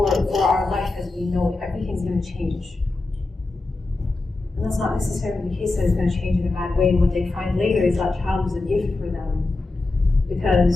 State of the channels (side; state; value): right; quieter; 3.2 dB